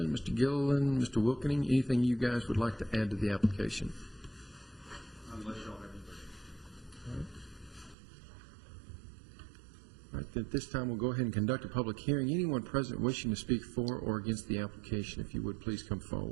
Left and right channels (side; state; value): left; drops out; at 8.0 s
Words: Mr. Gilliland, Mr. Wilkening, anything you guys would like to add to the application? Unless y'all have anything. All right, then at this time we'll go ahead and conduct a public hearing. Anyone present wishing to speak for or against the application, if you would please come